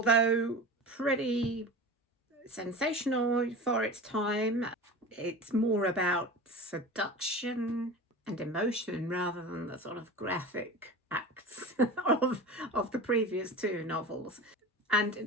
pretty sensational for its time, it's more about seduction and emotion rather than the sort of graphic acts of the previous two novels. And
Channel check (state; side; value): normal; both; correlation 0.32